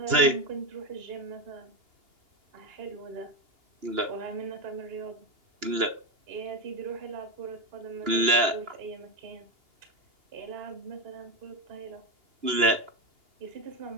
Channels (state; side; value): late; left; 2.9 ms